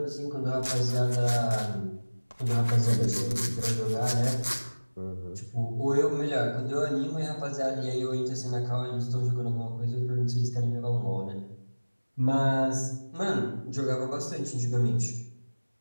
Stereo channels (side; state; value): both; inverted; correlation -1.00